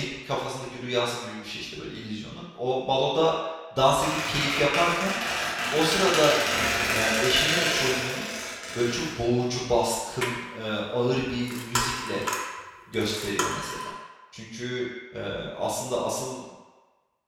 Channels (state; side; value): identical; both; correlation 1.00